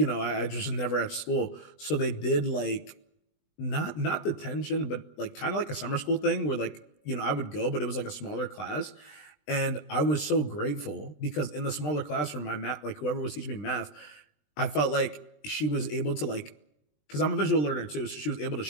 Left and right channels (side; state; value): right; late; 20 ms